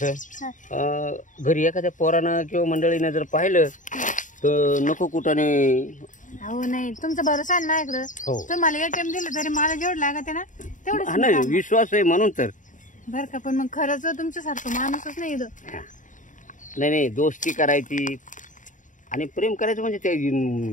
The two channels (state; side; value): late; right; 0.37 ms